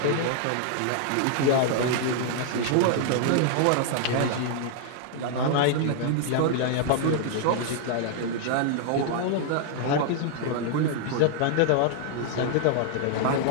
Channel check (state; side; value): different; both; correlation 0.00